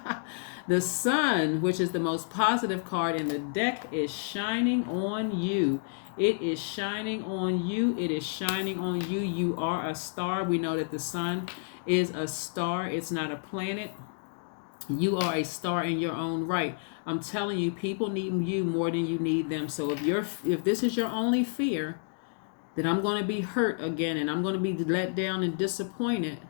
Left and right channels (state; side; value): silent; right; digital silence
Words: The sun, which is the most positive card in the deck, is shining on you. It is shining on you. It is shining on you. You are a star. We know that the sun is a star. It's not a planet. You are a star in your own right. I'm telling you, people need you more than you need them. So if this is your only fear, that I'm going to be hurt again and I'm going to be let down and disappointed,